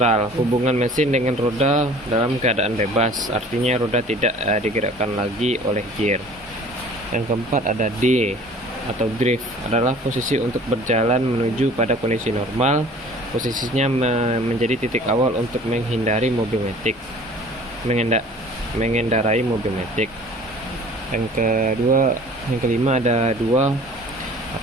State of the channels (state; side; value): normal; both; correlation 0.48